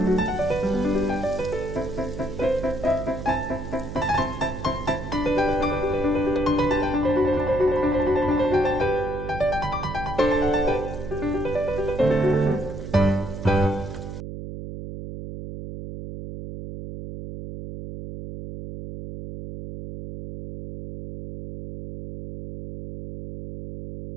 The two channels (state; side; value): noise; right; hum, 9 dB below the sound